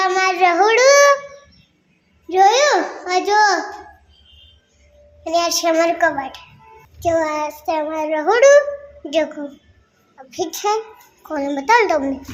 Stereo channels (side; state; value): both; identical; correlation 1.00